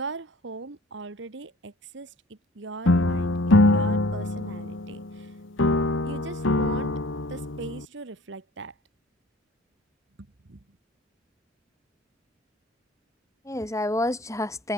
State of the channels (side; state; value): both; normal; correlation 0.49